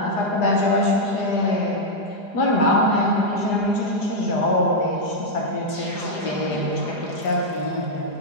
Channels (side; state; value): right; late; 4.9 ms